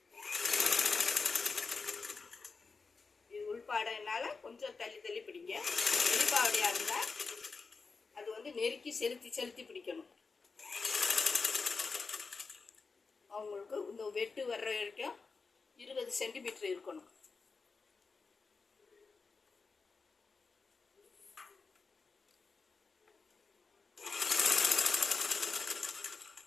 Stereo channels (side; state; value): right; quieter; 4.5 dB